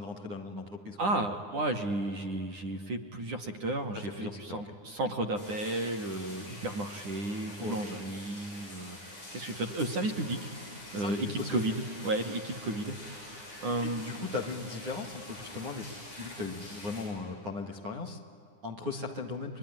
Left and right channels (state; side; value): late; left; 9.9 ms